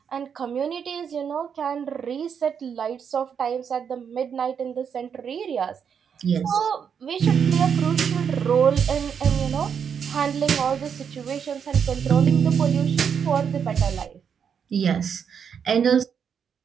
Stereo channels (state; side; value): quieter; left; 7.3 dB